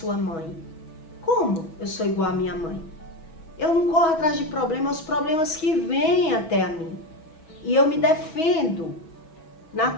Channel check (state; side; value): late; right; 6.2 ms